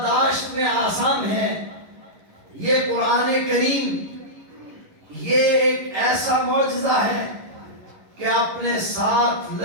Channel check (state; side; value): late; left; 11 ms